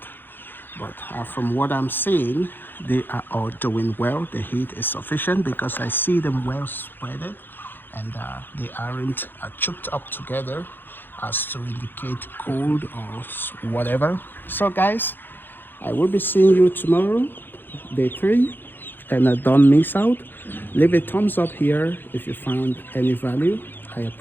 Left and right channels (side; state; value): right; late; 0.097 ms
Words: But from what I'm seeing, they are all doing well. The heat is sufficient because I see them well spreaded, and they aren't choked up together as to indicate cold or whatever. So guys, I will be seeing you tomorrow, day 3, and don't miss out. Leave a thumbs up here if you found any value. I